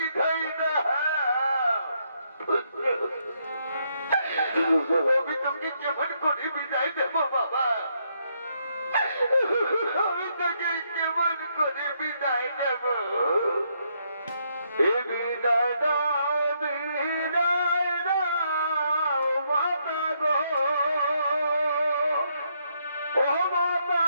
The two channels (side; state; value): both; inverted; correlation -0.75